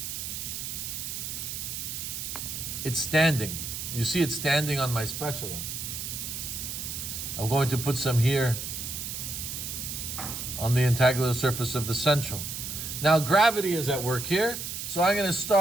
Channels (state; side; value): noise; right; hiss, 5 dB below the sound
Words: It's standing. You see it standing on my spatula. I'm going to put some here on the integular surface of the central. Now gravity is at work here, so I'm going to